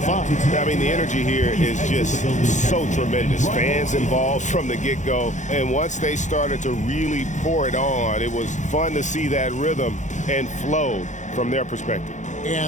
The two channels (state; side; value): late; right; 0.35 ms